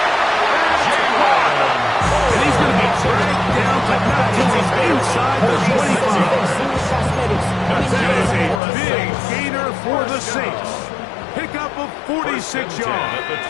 And he's going to be dragged down, but not till he's inside the 25. That is a big gainer for the Saints. Pickup of 46 yards. At the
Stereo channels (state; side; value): drops out; right; at 8.6 s